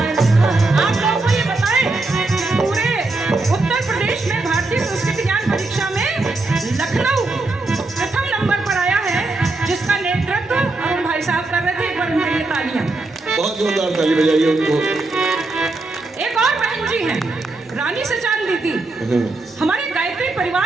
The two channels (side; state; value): left; quieter; 3.2 dB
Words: रा। आप लोगों को ये बताएं, पूरे उत्तर प्रदेश में भारतीय संस्कृति ज्ञान परीक्षा में लखनऊ प्रथम नंबर पर आया है, जिसका नेतृत्व अरुण भाई साहब कर रहे थे। एक बार उनके लिए तालियां। बहुत जोरदार ताली बजाइए उनको। एक और बहन जी हैं, रानी सचान दीदी। हमारे गायत्री